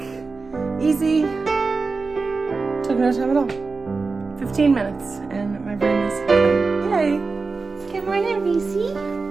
easy, took no time at all. 15 minutes and my brain is clean. Yay. Good morning, Reese.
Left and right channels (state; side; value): quieter; left; 4.2 dB